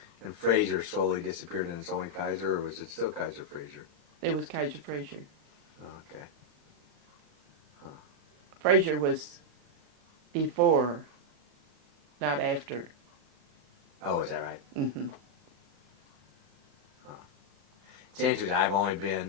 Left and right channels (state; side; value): late; left; 35 ms